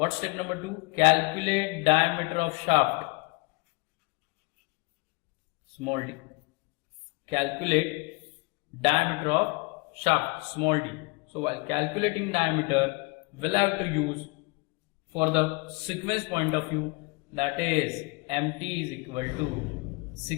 step number 2? Calculate diameter of shaft, small d. Calculate diameter of shaft, small d. So while calculating diameter, we'll have to use, for the sequence point of view, that is MT is equal to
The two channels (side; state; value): right; quieter; 27.4 dB